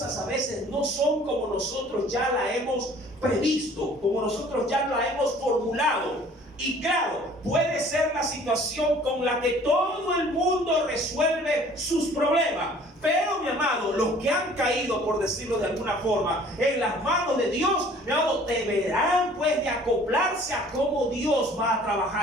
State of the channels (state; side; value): normal; both; correlation 0.52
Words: a veces no son como nosotros ya la hemos previsto, como nosotros ya la hemos formulado. Y claro, puede ser la situación con la que todo el mundo resuelve sus problemas. Pero, mi amado, los que han caído, por decirlo de alguna forma, en las manos de Dios, mi amado, deberán pues de acoplarse a cómo Dios va a